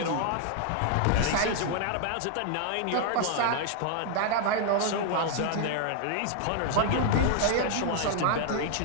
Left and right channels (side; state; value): both; different; correlation 0.00